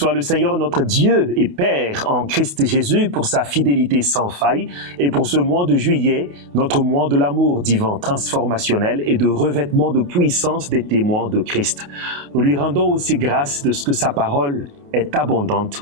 le Seigneur notre Dieu et Père en Christ Jésus pour sa fidélité sans faille et pour ce mois de juillet, notre mois de l'amour divin transformationnel et de revêtement de puissance des témoins de Christ. Nous lui rendons aussi grâce de ce que sa parole est abondante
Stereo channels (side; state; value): left; late; 28 ms